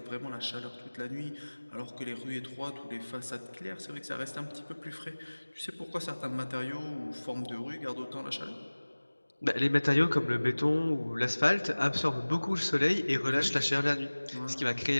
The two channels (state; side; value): inverted; both; correlation -1.00